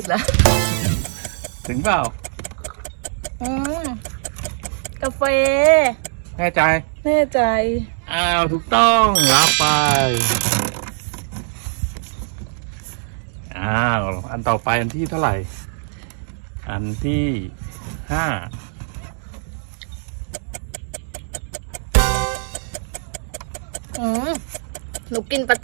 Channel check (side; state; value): left; silent; digital silence